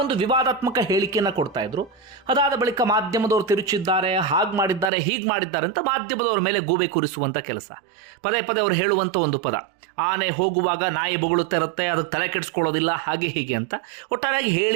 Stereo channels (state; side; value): drops out; left; at 4.9 s